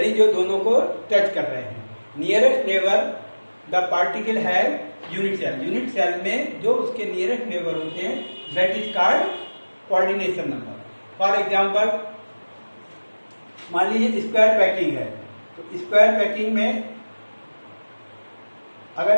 जो दोनों को टच कर रहे हैं। नियरेस्ट नेबर द पार्टिकल है यूनिट सेल। यूनिट सेल में जो उसके नियरेस्ट नेबर होते हैं, that is called coordination number. For example, मान लीजिए स्क्वायर पैकिंग है, तो स्क्वायर पैकिंग में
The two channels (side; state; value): both; inverted; correlation -1.00